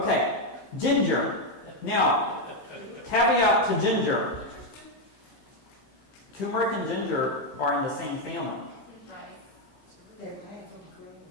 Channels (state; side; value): late; right; 15 ms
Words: ginger. Now, caveat to ginger. Turmeric and ginger are in the same family.